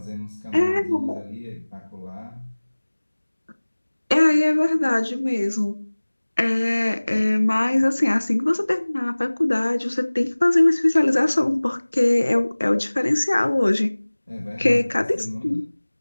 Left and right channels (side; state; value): both; inverted; correlation -1.00